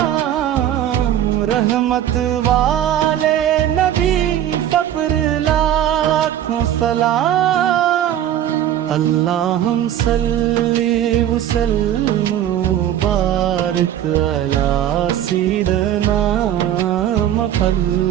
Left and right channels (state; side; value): quieter; left; 11.2 dB